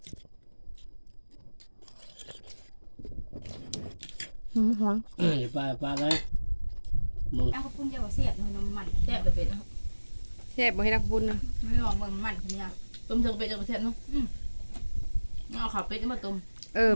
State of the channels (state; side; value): inverted; both; correlation -1.00